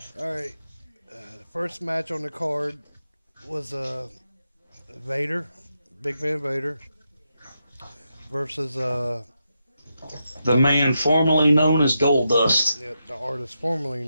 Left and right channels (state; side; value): inverted; both; correlation -0.85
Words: All right. The first match on the card was Vader, Big Van Vader, versus The man formerly known as Goldust. the artist formerly